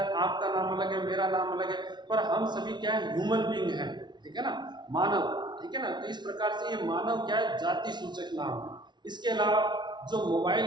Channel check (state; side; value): late; left; 0.21 ms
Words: आपका नाम अलग है, मेरा नाम अलग है, पर हम सभी क्या है, ह्यूमन बीइंग है, ठीक है ना, मानव, ठीक है ना। तो इस प्रकार से ये मानव क्या है, जाति सूचक नाम है। इसके अलावा जो मोबाइल